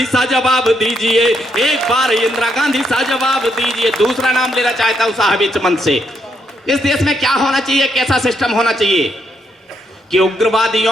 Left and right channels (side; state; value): both; normal; correlation 0.77